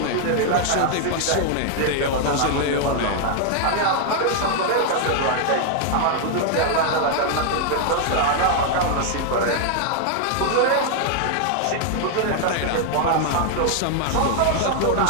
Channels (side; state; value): both; different; correlation 0.00